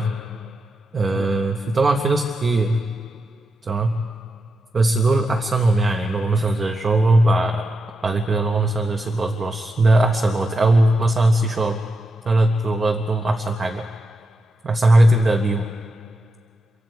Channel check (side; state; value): both; normal; correlation 0.87